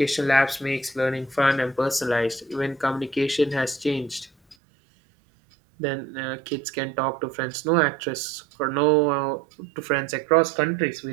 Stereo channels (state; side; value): drops out; left; at 4.5 s